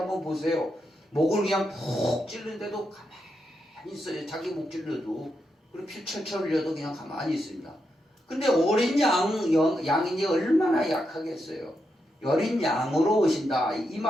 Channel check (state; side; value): normal; both; correlation 0.84